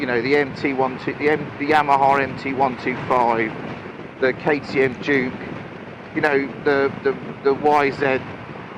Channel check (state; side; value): identical; both; correlation 1.00